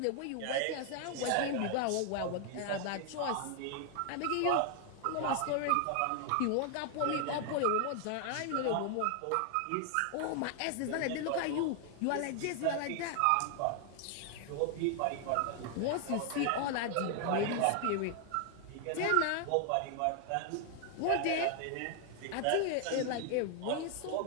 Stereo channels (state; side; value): different; both; correlation 0.00